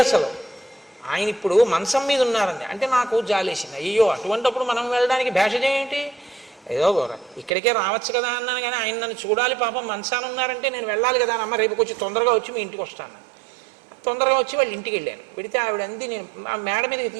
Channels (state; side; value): drops out; left; at 7.5 s